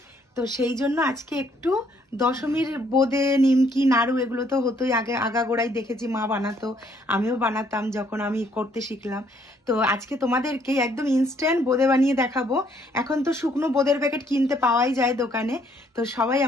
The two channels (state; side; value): normal; both; correlation 0.67